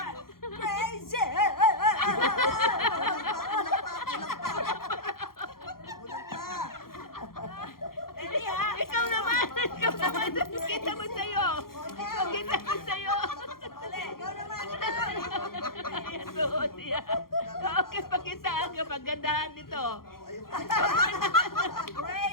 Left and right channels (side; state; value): right; late; 0.92 ms